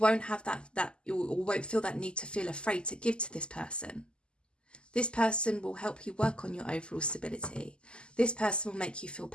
have you won't feel that need to feel afraid to give to this person. This person will help you work on your overall stability. This person will make you feel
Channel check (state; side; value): late; right; 0.049 ms